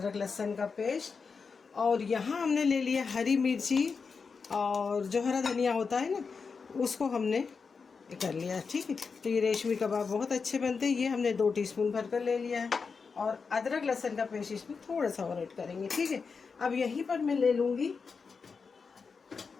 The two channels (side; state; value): right; quieter; 5.2 dB